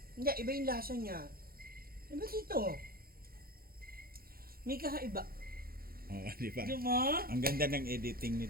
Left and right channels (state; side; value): late; left; 0.43 ms